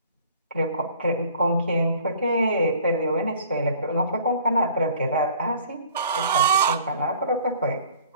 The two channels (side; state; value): both; inverted; correlation -0.51